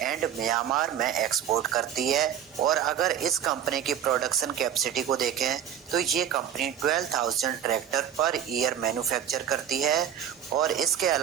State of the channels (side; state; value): left; quieter; 9.5 dB